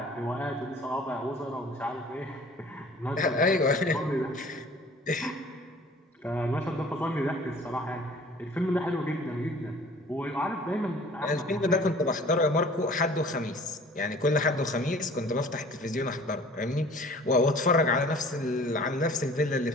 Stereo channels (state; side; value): normal; both; correlation 0.48